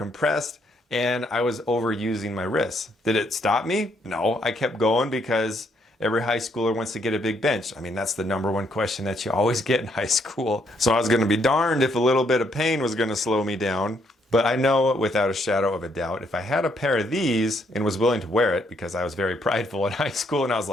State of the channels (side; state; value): both; normal; correlation 0.72